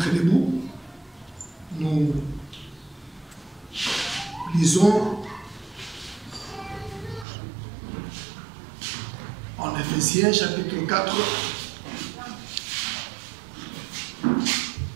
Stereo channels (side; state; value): left; drops out; at 7.2 s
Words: debout. Nous lisons en Éphésiens chapitre 4